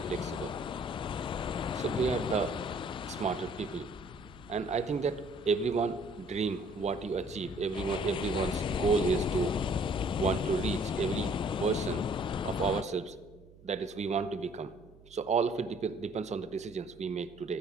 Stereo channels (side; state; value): right; noise; hum, 24 dB below the sound